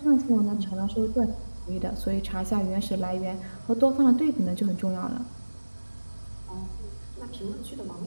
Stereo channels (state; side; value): inverted; both; correlation -1.00